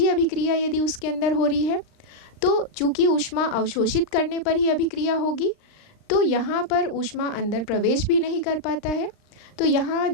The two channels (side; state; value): right; late; 39 ms